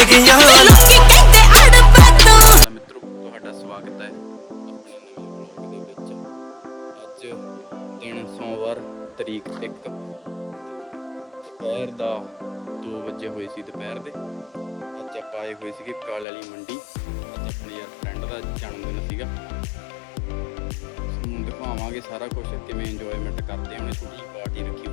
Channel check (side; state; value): right; drops out; at 16.2 s